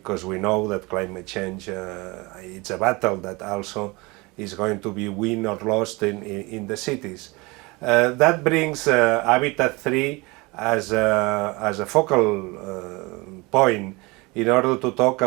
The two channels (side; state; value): left; quieter; 25.0 dB